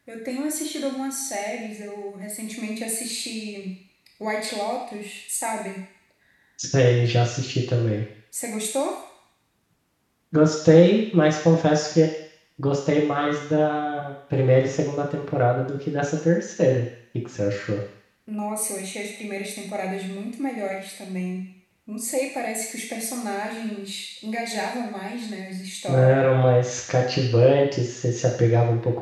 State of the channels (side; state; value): both; identical; correlation 1.00